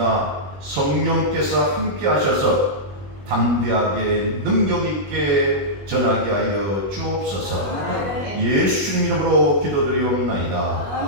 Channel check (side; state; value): left; late; 21 ms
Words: 성령께서 함께 하셔서 담대하게 능력 있게 전하게 하여 주옵소서. 예수님 이름으로 기도드리옵나이다.